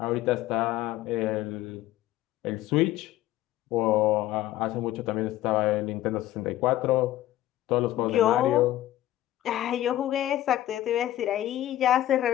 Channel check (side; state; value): right; quieter; 14.2 dB